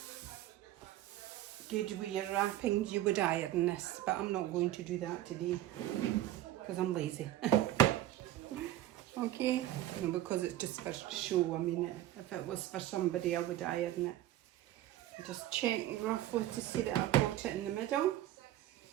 good with your wrappings, you would iron this, but I'm not going to do that today because I'm lazy. Okay, no, because it's just for show. I mean, if it was for somebody, I would iron it. Just check roughly to see that I've got it in the middle.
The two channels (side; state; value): left; quieter; 13.8 dB